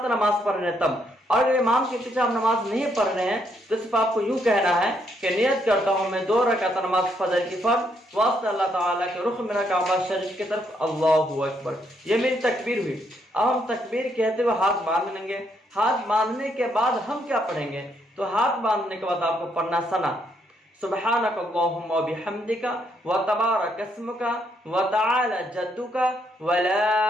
نماز پڑھ رہے ہیں تب، اور اگر امام کے پیچھے ہم نماز نہیں پڑھ رہے ہیں تو صرف آپ کو یوں کہنا ہے کہ نیت کرتا ہوں میں 2 رکعت نماز فجر کی فرض واسطے اللہ تعالیٰ کے، رخ میرا کعبہ شریف کی طرف، اللہ اکبر۔ یہ میری تکبیر ہوئی۔ اب ہم تکبیر کہتے ہوئے ہاتھ باندھ لیں گے۔ ہاتھ باندھنے کے بعد ہم کیا پڑھیں گے؟ تو ہاتھ باندھنے کے بعد آپ کو پڑھنا ثنا، سبحانک اللہم و بحمدک و تبارک اسمک و تعالی جدک و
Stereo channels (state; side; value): normal; both; correlation 0.74